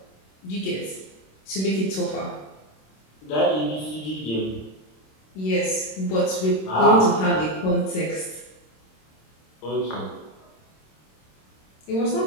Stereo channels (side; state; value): right; late; 26 ms